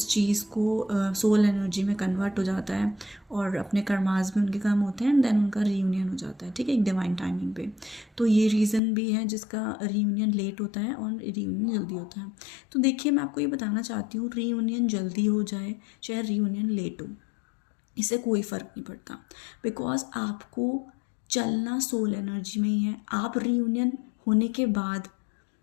चीज़ को सोल एनर्जी में कन्वर्ट हो जाता है और अपने कर्मास भी उनके काम होते हैं एंड देन उनका रीयूनियन हो जाता है, ठीक है, एक डिवाइन टाइमिंग पे। तो ये रीज़न भी है जिसका रीयूनियन लेट होता है और रीयूनियन जल्दी होता है। तो देखिए, मैं आपको ये बताना चाहती हूँ, रीयूनियन जल्दी हो जाए चाहे रीयूनियन लेट हो, इससे कोई फ़र्क नहीं पड़ता, बिकॉज आपको चलना सोल एनर्जी में ही है। आप रीयूनियन होने के बाद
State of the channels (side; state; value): right; drops out; at 8.8 s